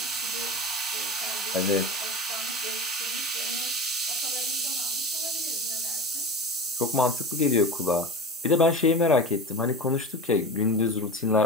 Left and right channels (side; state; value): both; normal; correlation 0.30